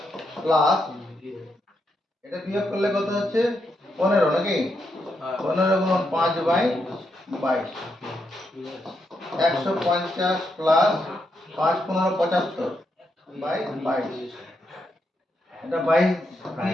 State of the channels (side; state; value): both; normal; correlation 0.81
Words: প্লাস এটা বিয়োগ করলে কত হচ্ছে? 15 নাকি? 15 গুণ 5/22। 150 প্লাস 5 15 75/22। এটা 22